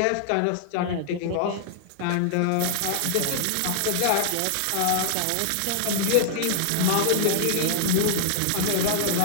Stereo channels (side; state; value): both; different; correlation -0.01